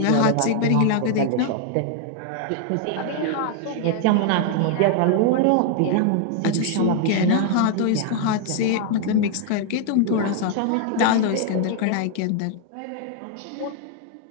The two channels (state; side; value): different; both; correlation 0.00